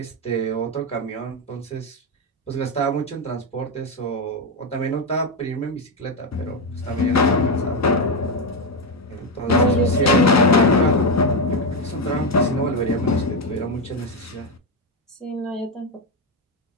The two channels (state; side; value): normal; both; correlation 0.08